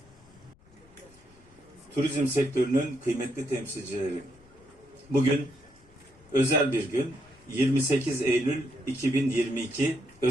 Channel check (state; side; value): noise; left; rumble, 27 dB below the sound